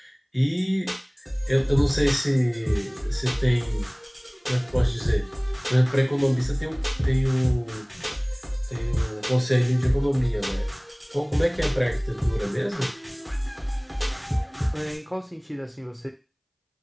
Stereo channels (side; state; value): both; identical; correlation 1.00